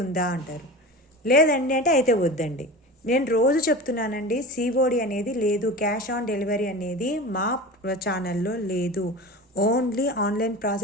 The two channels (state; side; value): normal; both; correlation 0.32